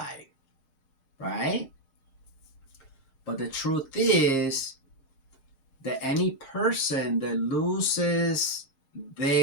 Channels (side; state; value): right; late; 6.6 ms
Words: right? But the truth is that any person that loses